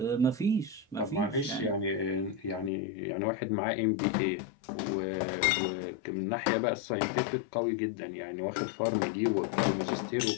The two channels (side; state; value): right; drops out; at 2.7 s